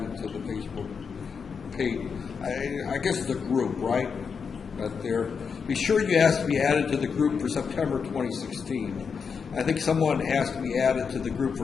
to the Facebook page. I guess it's a group, right? Out there. Be sure you ask to be added to the group for September 2016. I think someone asked to be added to the group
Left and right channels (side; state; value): right; quieter; 5.9 dB